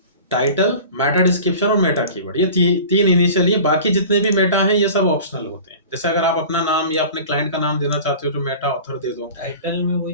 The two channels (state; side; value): inverted; both; correlation -0.39